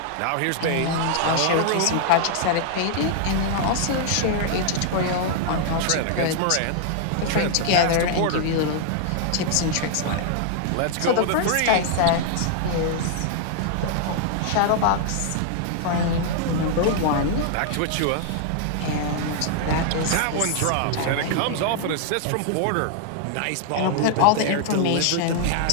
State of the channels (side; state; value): both; different; correlation -0.01